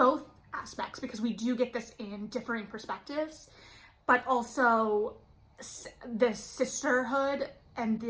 aspects, because we do get this in differing perspectives, but also this sisterhood and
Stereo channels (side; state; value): both; identical; correlation 1.00